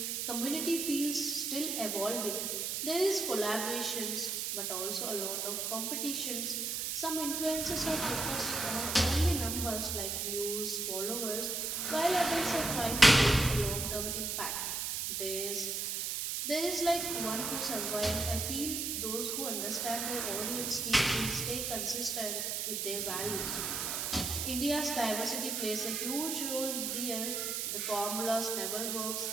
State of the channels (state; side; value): noise; right; hiss, 1 dB below the sound